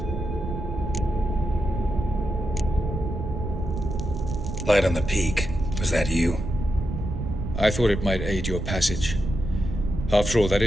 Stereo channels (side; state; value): right; noise; rumble, 5 dB below the sound